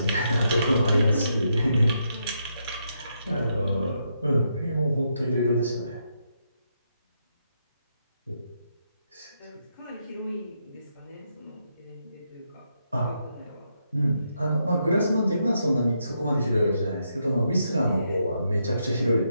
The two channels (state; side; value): inverted; both; correlation -0.80